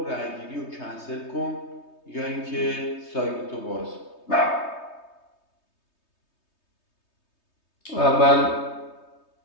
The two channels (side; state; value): right; late; 3.2 ms